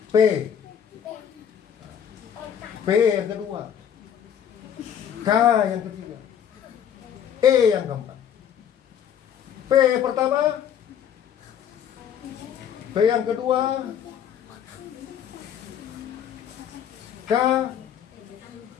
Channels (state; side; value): quieter; right; 8.9 dB